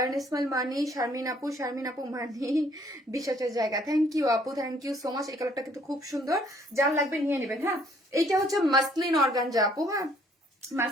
ইসমাইল মানি, শারমিন আপু মানি বিশ্বাসের জায়গা। থ্যাংক ইউ আপু, থ্যাংক ইউ সো মাচ। এই কালারটা কিন্তু খুব সুন্দর, যার লাগবে নিয়ে নেবেন। হ্যাঁ, এইটা হচ্ছে মাসলিন অর্গানজা আপু। হ্যাঁ,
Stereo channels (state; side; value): normal; both; correlation 0.63